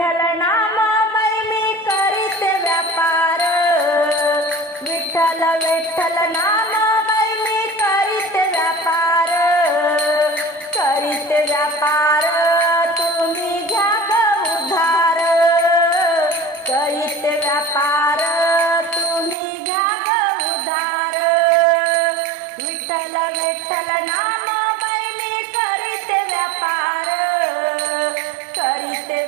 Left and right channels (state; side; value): drops out; left; at 19.4 s